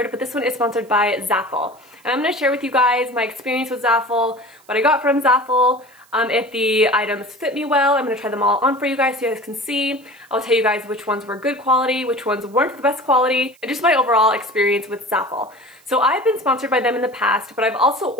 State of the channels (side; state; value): right; noise; hiss, 30 dB below the sound